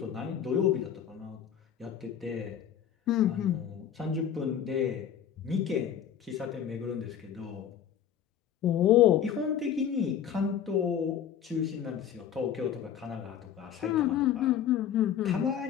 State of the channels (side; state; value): right; quieter; 9.2 dB